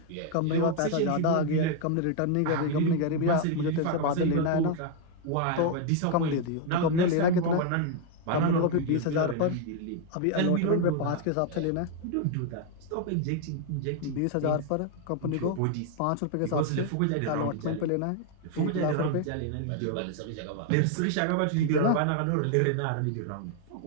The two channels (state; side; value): different; both; correlation 0.00